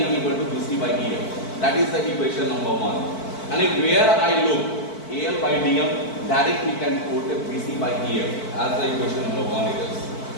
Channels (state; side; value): late; right; 4.5 ms